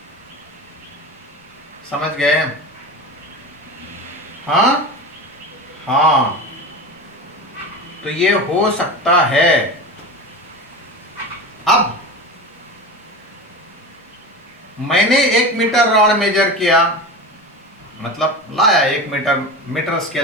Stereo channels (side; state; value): both; normal; correlation 0.27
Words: समझ गए? हाँ हाँ, तो ये हो सकता है। अब मैंने 1 मीटर रॉड मेजर किया, मतलब लाया 1 मीटर